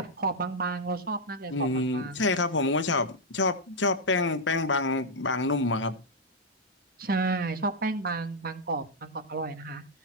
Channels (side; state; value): both; normal; correlation -0.03